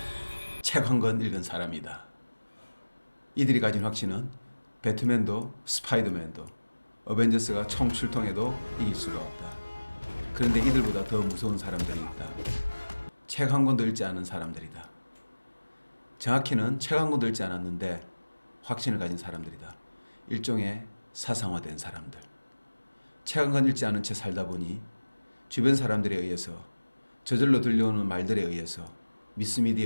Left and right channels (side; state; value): both; inverted; correlation -1.00